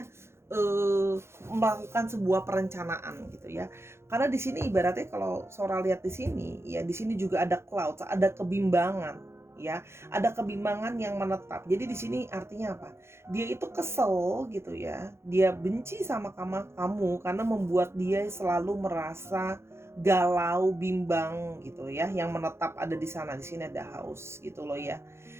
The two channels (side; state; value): left; late; 0.13 ms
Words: melakukan sebuah perencanaan gitu ya. Karena di sini ibaratnya kalau Sora lihat di sini ya, di sini juga ada clouds, ada kebimbangan ya, ada kebimbangan yang menetap. Jadi di sini artinya apa? Dia itu kesel gitu ya. Dia benci sama kamu karena membuat dia selalu merasa galau, bimbang gitu ya. Yang menetap ada di sana. Di sini ada house gitu loh ya.